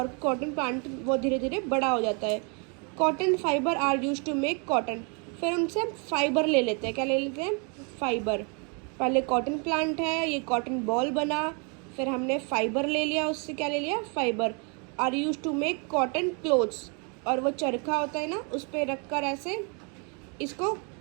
कॉटन प्लांट वो धीरे धीरे बड़ा हो जाता है। Cotton fibre are use to make cotton, फिर उनसे हम फाइबर ले लेते हैं। क्या ले लेते हैं? फाइबर। पहले कॉटन प्लांट है, ये कॉटन बॉल बना, फिर हमने फाइबर ले लिया, उससे क्या ले लिया? Fibre. Are use to make cotton clothes, और वो चरखा होता है ना उस पर रख कर ऐसे इसको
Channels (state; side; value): quieter; left; 35.4 dB